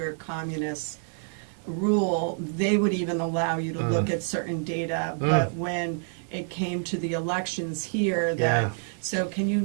communist rule, they would even allow you to look at certain data, but when it came to the elections here, so can you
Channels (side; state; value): left; silent; 60 dB below the other